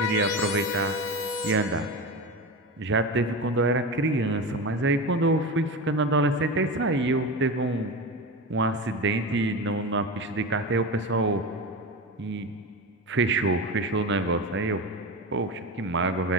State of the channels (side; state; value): both; normal; correlation 0.24